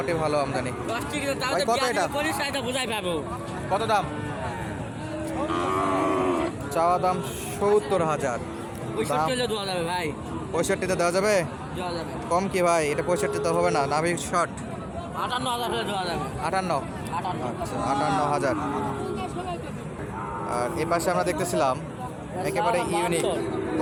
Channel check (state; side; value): identical; both; correlation 1.00